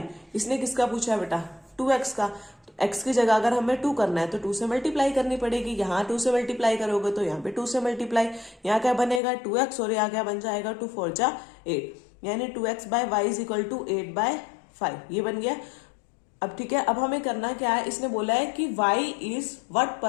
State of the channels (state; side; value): drops out; right; at 9.2 s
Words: इसने किसका पूछा है बेटा? 2x का। तो x की जगह अगर हमें 2 करना है तो 2 से मल्टीप्लाई करनी पड़ेगी। यहाँ 2 से मल्टीप्लाई करोगे तो यहाँ पे 2 से मल्टीप्लाई, यहाँ क्या बनेगा? 2x, और यहाँ क्या बन जाएगा? 2 4 जा 8, यानी 2x by y is equal to 8/5। ये बन गया। अब ठीक है, अब हमें करना क्या है? इसने बोला है कि y is what